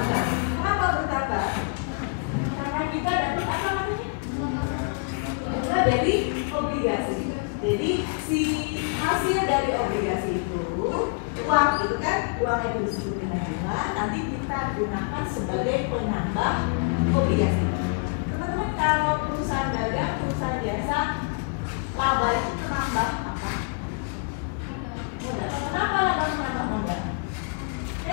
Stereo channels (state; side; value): quieter; right; 34.9 dB